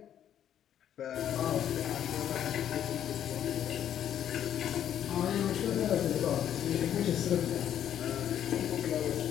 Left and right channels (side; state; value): right; quieter; 10.2 dB